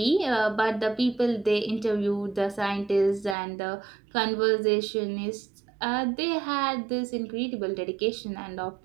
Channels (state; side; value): drops out; left; at 3.4 s